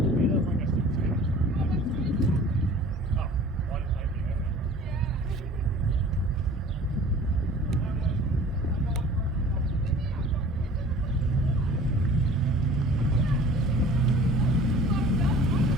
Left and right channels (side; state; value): both; normal; correlation 0.46